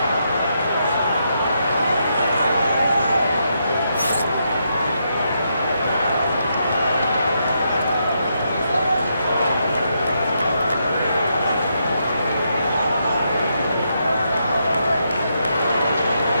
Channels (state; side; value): inverted; both; correlation -0.80